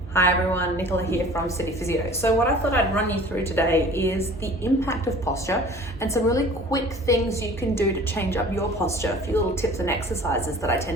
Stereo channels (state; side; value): normal; both; correlation 0.46